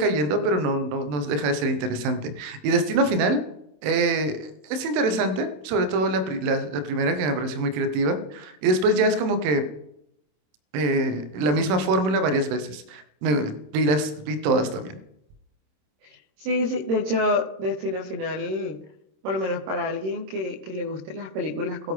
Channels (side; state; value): left; late; 27 ms